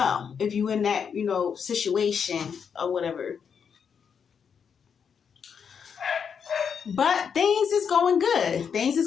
in that, situation or whatever. But things is going good.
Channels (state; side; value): quieter; right; 6.9 dB